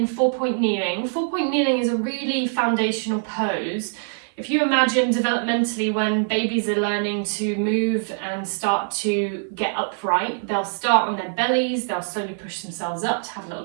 4-point kneeling. 4-point kneeling is a really foundational pose. If you imagine developmentally when babies are learning to move and start to get upright, they'll start on their bellies, they'll slowly push themselves up to have a little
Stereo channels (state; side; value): silent; left; 63 dB below the other